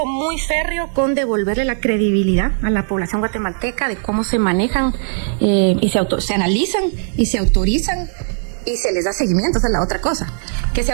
muy férreo con devolverle la credibilidad a la población guatemalteca de cómo se manejan y se analizan y se autorizan y se les da seguimiento. Esa es la otra cosa. Que se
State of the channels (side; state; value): left; silent; digital silence